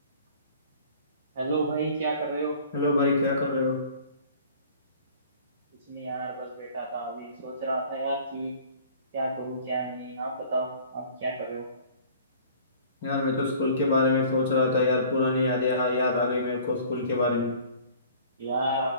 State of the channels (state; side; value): inverted; both; correlation -0.49